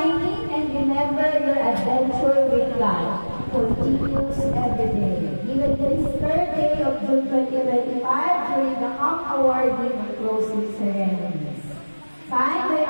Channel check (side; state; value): both; inverted; correlation -1.00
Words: and remember your adventure with God continues every day. Even this third day of June 2025 during the camp awarding and closing ceremonies. Signed by